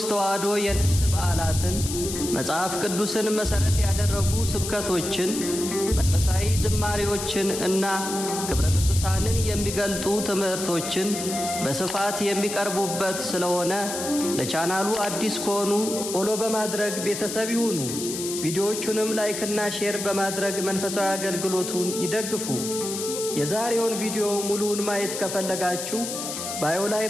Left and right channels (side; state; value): left; noise; hiss, 6 dB below the sound